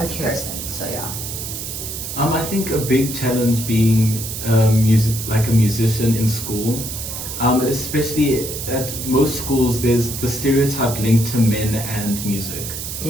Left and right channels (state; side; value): noise; right; hiss, 7 dB below the sound